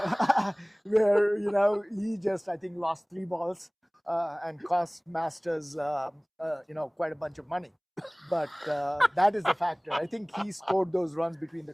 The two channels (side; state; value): both; identical; correlation 1.00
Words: Where, he just, I think, lost 3 balls and cost Masters, quite a bunch of money. But that is the factor. I think he scored those runs between the